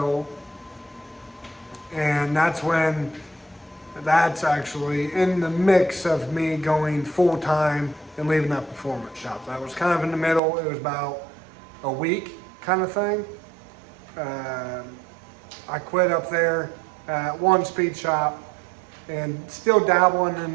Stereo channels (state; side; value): drops out; left; at 10.4 s